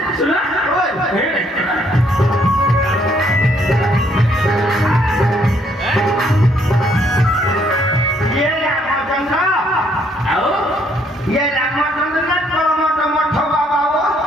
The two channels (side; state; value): both; normal; correlation 0.68